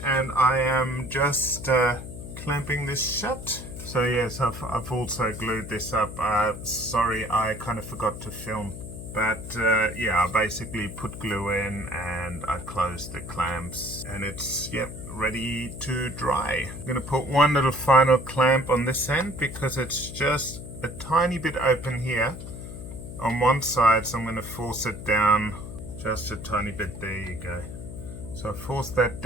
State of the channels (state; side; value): noise; left; hum, 10 dB below the sound